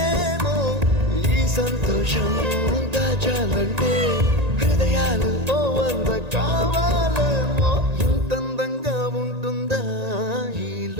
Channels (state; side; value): late; left; 1.9 ms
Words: ఈ సంతోషం దాచాలంటే హృదయాలు ఓ వంద కావాలేమో ఇంతందంగా ఉంటుందా ఈ